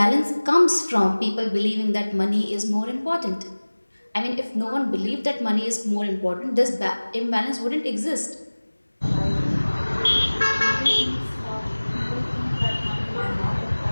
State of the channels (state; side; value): inverted; both; correlation -1.00